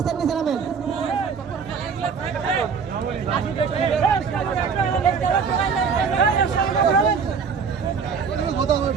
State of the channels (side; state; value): left; quieter; 6.0 dB